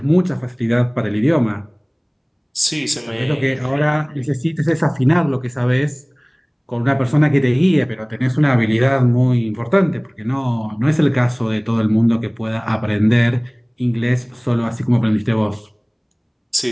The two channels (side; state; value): both; identical; correlation 1.00